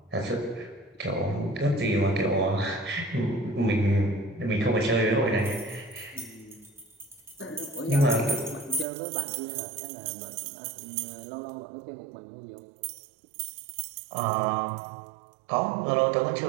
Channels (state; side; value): drops out; left; at 8.8 s